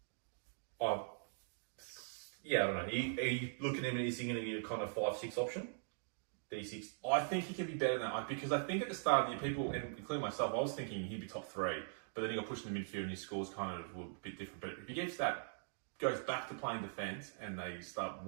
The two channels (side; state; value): left; silent; digital silence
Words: Yeah, I don't know. Are you looking at him and is he going to be a kind of 5-6 option? D6? I think he can be better than that because I think at the start of the year, people, and including myself, I was thinking he'd be top 3, but then he got pushed in the midfield and his scores kind of were a bit different. But if he goes back to playing defence and they start